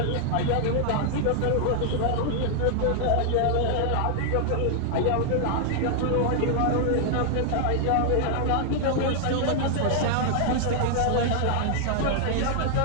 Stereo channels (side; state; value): both; different; correlation 0.00